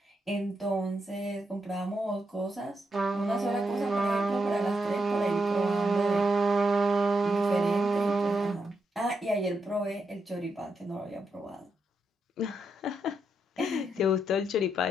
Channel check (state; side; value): normal; both; correlation 0.82